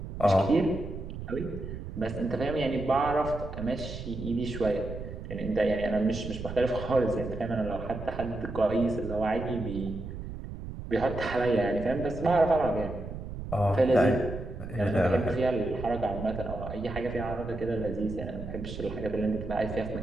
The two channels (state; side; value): noise; right; rumble, 9 dB below the sound